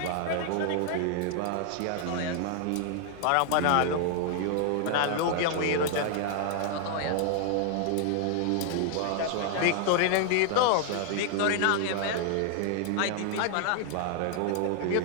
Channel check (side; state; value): both; different; correlation 0.00